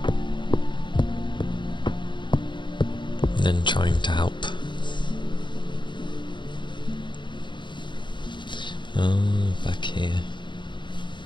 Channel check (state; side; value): late; right; 0.23 ms